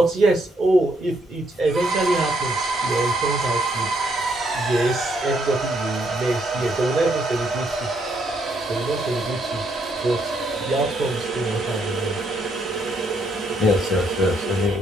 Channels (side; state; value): both; normal; correlation 0.73